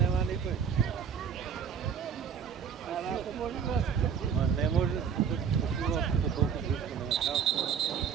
nikoj. Ma ne može sila to toliko blisko, nema samce.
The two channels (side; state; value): left; quieter; 7.1 dB